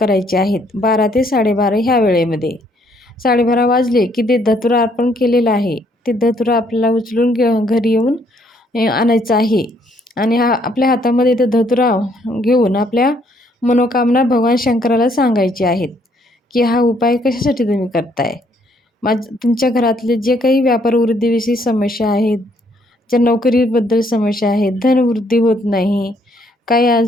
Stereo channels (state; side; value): normal; both; correlation 0.68